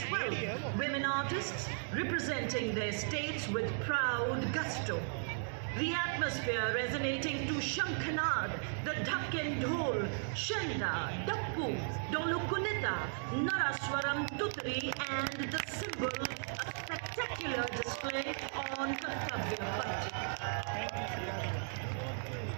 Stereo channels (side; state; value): left; silent; digital silence